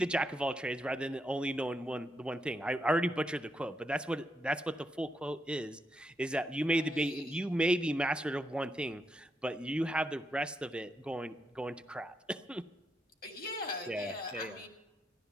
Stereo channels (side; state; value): both; normal; correlation 0.81